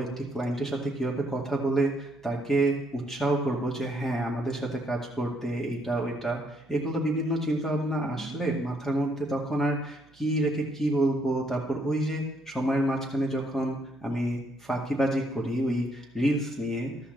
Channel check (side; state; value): right; noise; hum, 30 dB below the sound